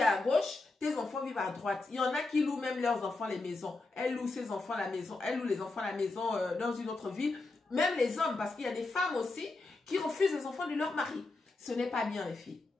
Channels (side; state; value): right; quieter; 3.4 dB